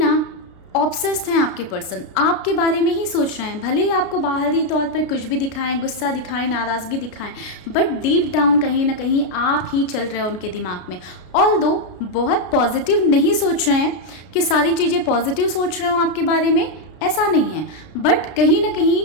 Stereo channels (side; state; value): right; late; 33 ms